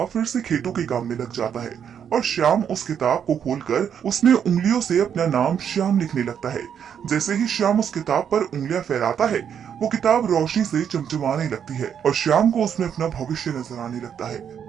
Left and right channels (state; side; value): quieter; left; 8.3 dB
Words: फिर से खेतों के काम में लग जाता है और श्याम उस किताब को खोलकर उसमें उंगलियों से अपना नाम श्याम लिखने लगता है। जैसे ही श्याम उस किताब पर उंगलियां फहराता है, वो किताब रोशनी से चमचमाने लगती है और श्याम को उसमें अपना भविष्य नजर आने लगता है।